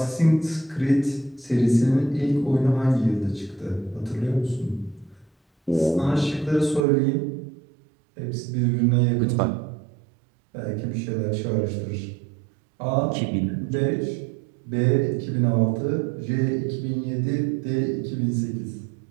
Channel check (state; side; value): drops out; left; at 6.9 s